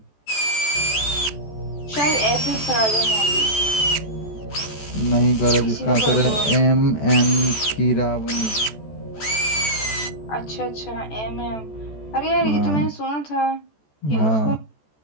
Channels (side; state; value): right; late; 14 ms